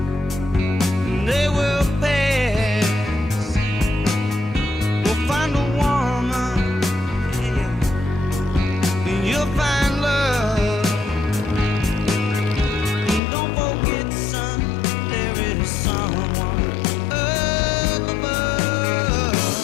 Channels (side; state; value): right; drops out; at 13.2 s